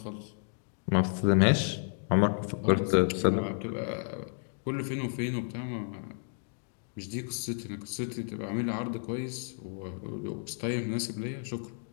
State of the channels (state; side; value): silent; right; 57 dB below the other